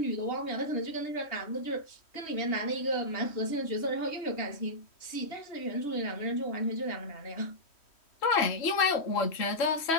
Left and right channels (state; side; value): late; right; 3.1 ms